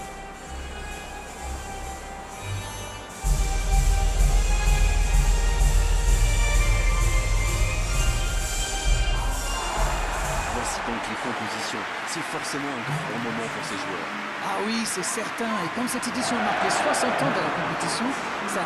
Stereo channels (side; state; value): both; identical; correlation 1.00